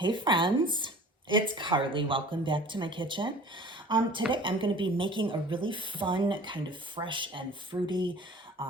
friends, it's Carly. Welcome back to my kitchen. Today I'm going to be making a really fun, kind of fresh and fruity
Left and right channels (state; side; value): normal; both; correlation 0.44